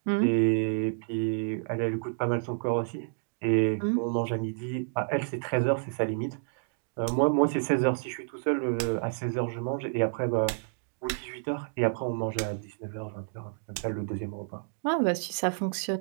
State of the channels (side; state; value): left; silent; digital silence